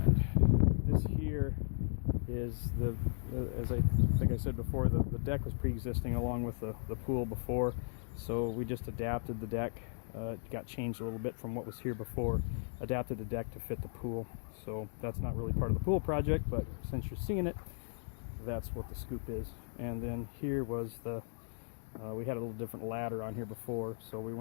this here is as I think I said before, the deck was pre-existing along with the pool before, so we just adapted the deck. It got changed a little bit from what was here before, adapted the deck to fit the pool. So that's not really part of the pool project, but since you're seeing it, that's what the scoop is. And then here was we had a little different ladder on here before, so we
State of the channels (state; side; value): silent; right; digital silence